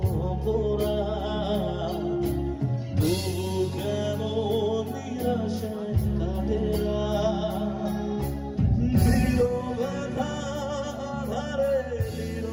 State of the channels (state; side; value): identical; both; correlation 1.00